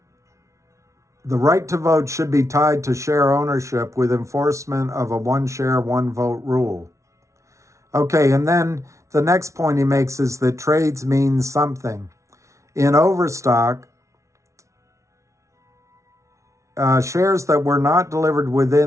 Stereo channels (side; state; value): left; late; 0.14 ms